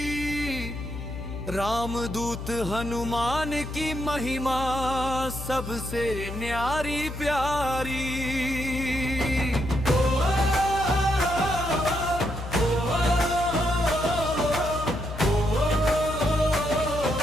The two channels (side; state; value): left; noise; hum, 8 dB below the sound